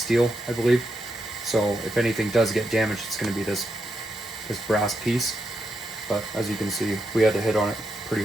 I believe. So if anything does get damaged, it's going to be this brass piece. But as you can see, we had to hit on it pretty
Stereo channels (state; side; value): normal; both; correlation 0.83